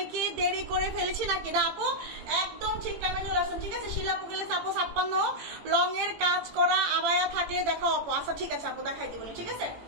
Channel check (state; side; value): late; left; 18 ms